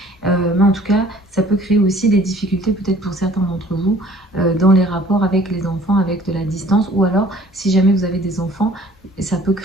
Mais en tout cas, ça peut créer aussi des difficultés, peut-être pour certains d'entre vous, dans les rapports avec les enfants, avec de la distance. Ou alors, si jamais vous avez des enfants, ça peut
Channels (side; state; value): both; normal; correlation 0.53